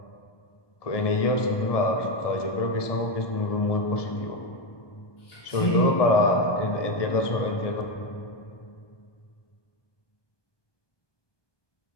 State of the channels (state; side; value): late; right; 1.2 ms